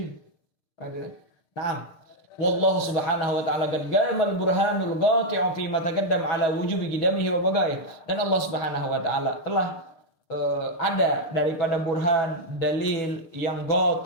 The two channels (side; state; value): right; late; 6.6 ms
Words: Nah, wallahu subhanahu wa ta'ala qad gamal burhanul qati'u fi ma taqaddam ala wujubi qidamihi wa bagaih. Dan Allah Subhanahu wa ta'ala telah ada daripada burhan, dalil yang